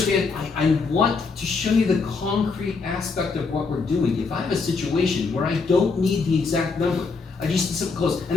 I want to show you the concrete aspect of what we're doing. If I have a situation where I don't need the exact number, I just need something close,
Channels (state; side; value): quieter; right; 4.5 dB